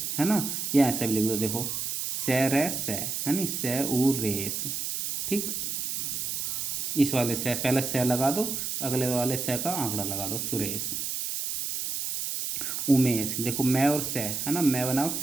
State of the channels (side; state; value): right; noise; hiss, 3 dB below the sound